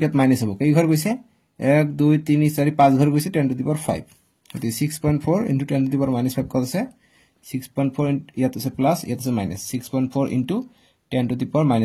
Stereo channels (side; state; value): both; identical; correlation 1.00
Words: মাইনাস হ'ব কেই ঘৰ গৈছে 1 2 3 4 5 ঘৰ গৈছে 10 টু দি পাৱাৰ 5 গতিকে 6.4 * 10 টু দি পাৱাৰ -5 কত আছে 6.4 ইয়াত আছে প্লাস ইয়াত আছে মাইনাস 6.4 * 10 টু দি পাৱাৰ